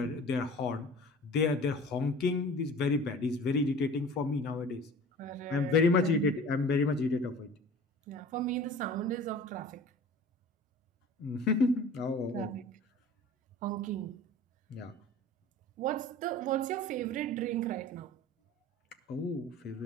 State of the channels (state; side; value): normal; both; correlation 0.42